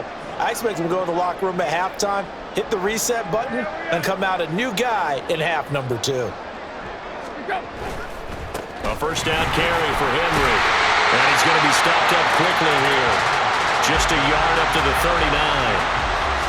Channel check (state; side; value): identical; both; correlation 1.00